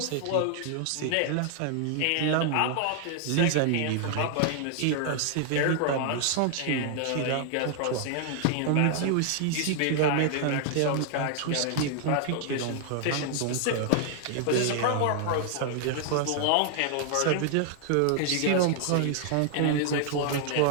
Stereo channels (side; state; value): both; different; correlation 0.00